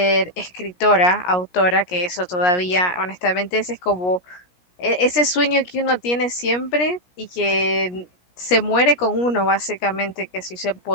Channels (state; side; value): late; right; 17 ms